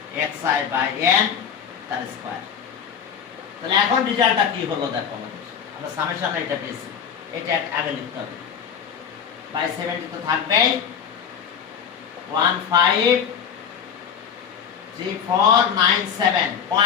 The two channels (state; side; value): quieter; right; 7.7 dB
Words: xi by n তার স্কয়ার। তাহলে এখন রেজাল্টটা কি হলো দেখো, আমরা সামেশন এটা পেয়েছি, এটা আগে লিখতে হবে। বাই 70 তো থাকবে